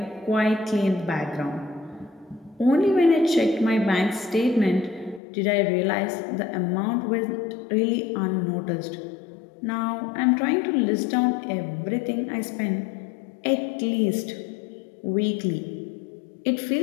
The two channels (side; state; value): right; drops out; at 5.2 s